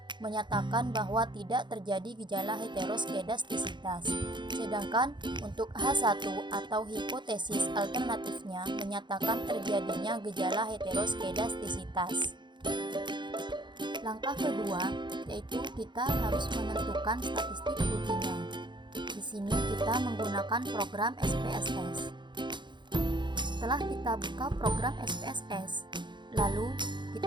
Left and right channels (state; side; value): late; left; 0.22 ms